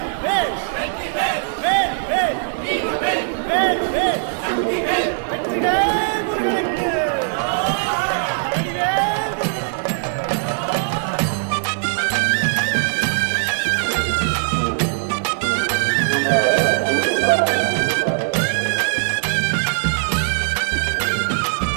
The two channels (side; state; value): left; silent; digital silence